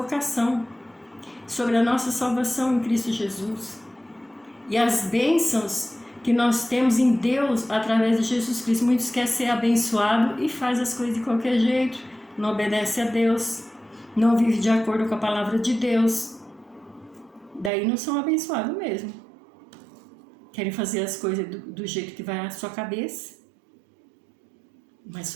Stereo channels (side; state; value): left; drops out; at 17.7 s